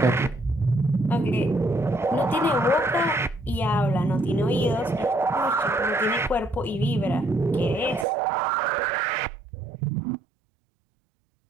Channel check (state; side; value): drops out; left; at 8.1 s